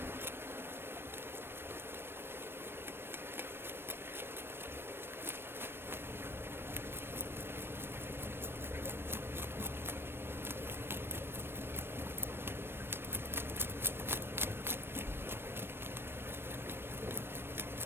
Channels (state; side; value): late; left; 0.11 ms